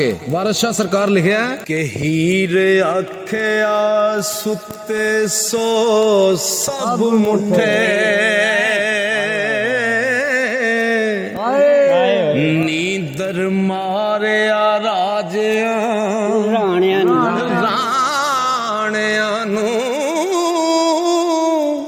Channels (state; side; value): identical; both; correlation 1.00